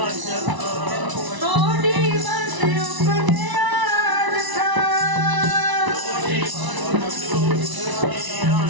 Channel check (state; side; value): late; left; 1.0 ms